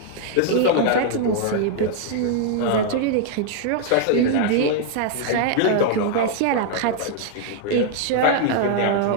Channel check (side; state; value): both; different; correlation 0.00